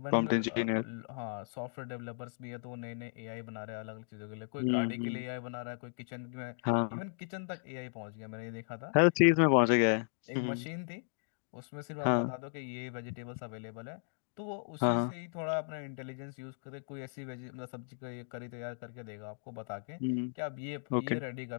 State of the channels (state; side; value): silent; right; digital silence